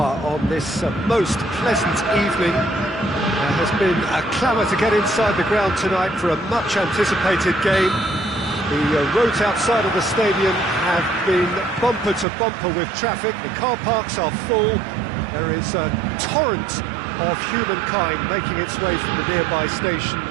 on this most pleasant evening. There has been a clamour to get inside the ground tonight for a much-anticipated game. The roads outside of the stadium have been bumper to bumper with traffic. The car parks are full. There is a torrent of humankind making its way from the nearby station,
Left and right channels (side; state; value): left; drops out; at 12.2 s